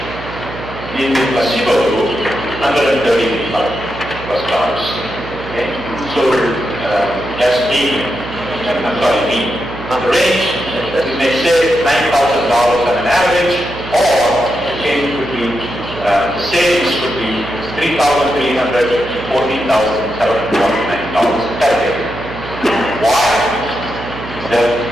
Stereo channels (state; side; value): noise; right; hum, 11 dB below the sound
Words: In the placebo group, $135. Okay? So that's me. The range, we may say $9,000 on an average, or the change would be, the savings would be $3,300 to $14,749 per day. Why? The